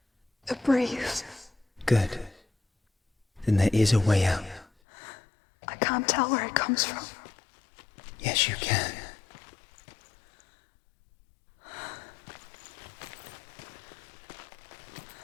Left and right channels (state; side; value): drops out; right; at 4.7 s